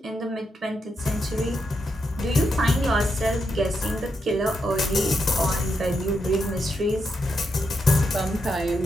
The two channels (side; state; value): both; normal; correlation 0.83